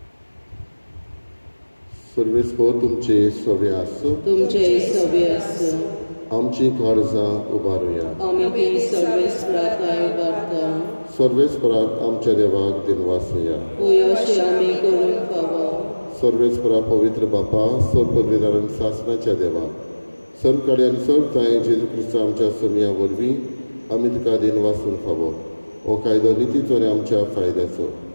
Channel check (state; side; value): inverted; both; correlation -1.00